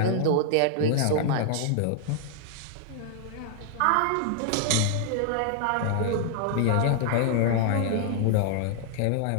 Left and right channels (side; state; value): both; different; correlation 0.00